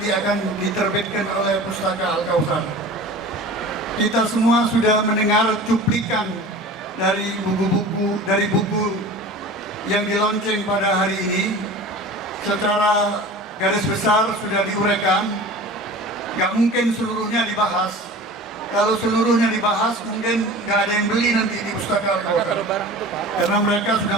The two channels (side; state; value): both; normal; correlation 0.38